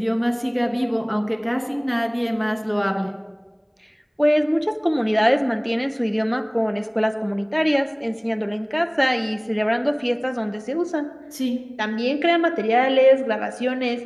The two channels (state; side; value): identical; both; correlation 1.00